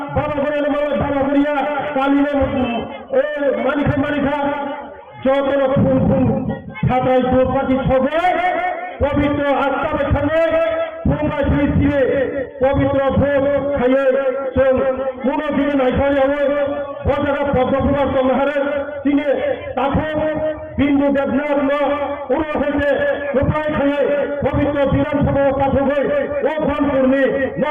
বাবা করে মানে বাবা করিয়া কালিনে মানে খায় যত ফুল ফুল ছাত্রাই দৌপাতি ছবে পবিত্র আত্মা বেখানে তোমরা ছিঁড়ে পবিত্র ভোগ খাইয়ে কোনো দিনে নাই খাই হবে বজারা পদ্মপুরার তোমারে তিনি তাকে বিন্দু দেবনাথ উড়ো হইতে উপায় খাইয়ে পবিত্র বিধানসভা পাঠক হয়ে ও ফোন করলে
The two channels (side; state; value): both; identical; correlation 1.00